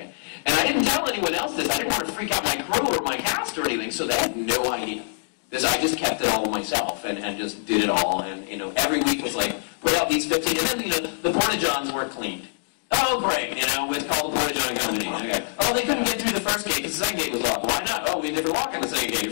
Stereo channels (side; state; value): right; silent; digital silence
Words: And I didn't tell anyone else this. I didn't want to freak out my crew or my cast or anything, so they had no idea. I just kept it all myself and just did it all. And, you know, every week was like, put out these 15, and then, you know, the Porta-Johns weren't cleaned. Oh, great, you know, it's called the Porta-John Company. Okay. Oh, they couldn't get through the first gate because the second gate was locked. Why not? Oh, we never lock on the second gate.